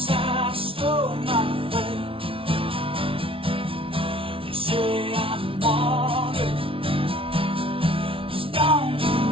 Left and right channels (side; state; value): left; late; 0.26 ms